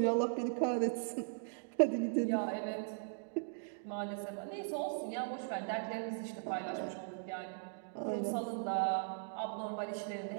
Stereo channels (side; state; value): left; silent; digital silence